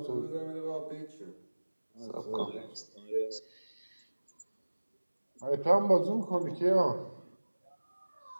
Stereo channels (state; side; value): inverted; both; correlation -1.00